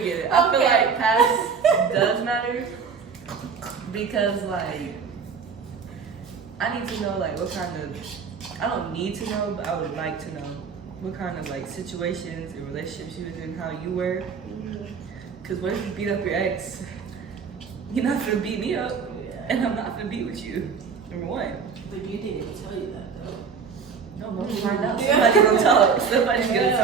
get it. I feel Okay. like past does matter because like I need to know like what kind of, I don't need to know, but I would like to know what kind of like situations and relationships you was in, how you were. Cause what if you beat up your ex? You're not gonna beat me up, and I'm not gonna be with you. Number one. But you didn't even tell you that though. No, we'll find out. Somebody's gonna talk. Somebody's gonna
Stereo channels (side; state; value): left; quieter; 5.9 dB